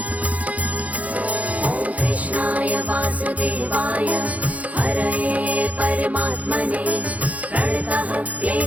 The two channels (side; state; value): left; late; 0.070 ms